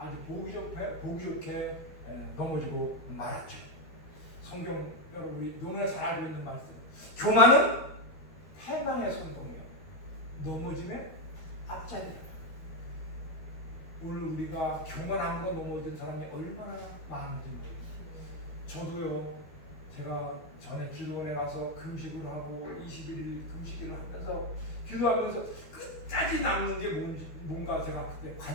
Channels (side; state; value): right; late; 12 ms